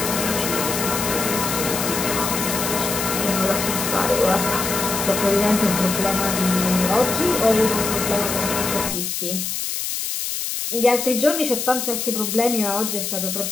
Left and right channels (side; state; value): left; noise; hiss, 3 dB below the sound